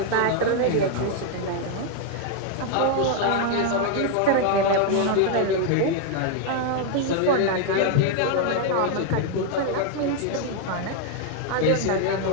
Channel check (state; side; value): different; both; correlation 0.00